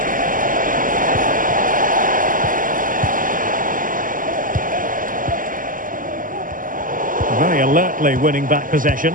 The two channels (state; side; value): late; left; 0.39 ms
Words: Very alertly winning back possession.